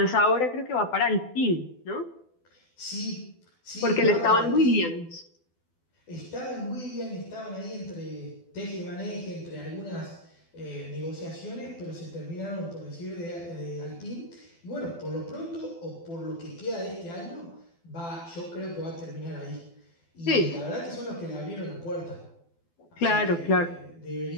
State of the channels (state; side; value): late; right; 12 ms